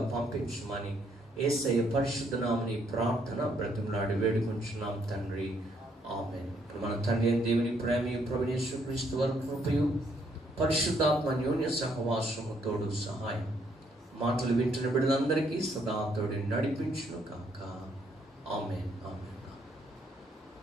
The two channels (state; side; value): normal; both; correlation 0.70